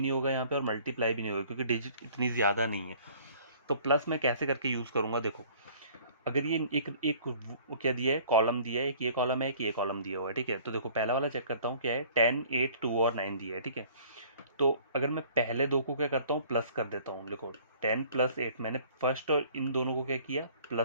होगा यहाँ पे, और मल्टीप्लाई भी नहीं होगा, क्योंकि डिजिट इतनी ज़्यादा नहीं है। तो प्लस मैं कैसे करके यूज़ करूँगा, देखो अगर ये एक एक क्या दिया है, कॉलम दिया है, एक ये कॉलम है, एक ये कॉलम दिया हुआ है, ठीक है। तो देखो पहला वाला चेक करता हूँ क्या है, 10 8 2 और 9 दिया है, ठीक है। तो अगर मैं पहले दो को क्या करता हूँ, प्लस कर देता हूँ, देखो 10 + 8, मैंने फर्स्ट और इन दोनों को क्या किया,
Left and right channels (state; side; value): inverted; both; correlation -0.53